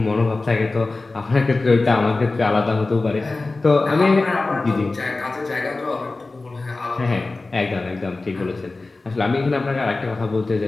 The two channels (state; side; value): quieter; right; 3.4 dB